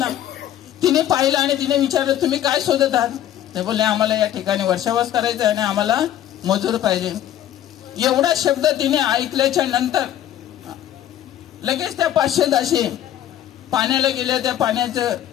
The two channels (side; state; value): right; quieter; 11.5 dB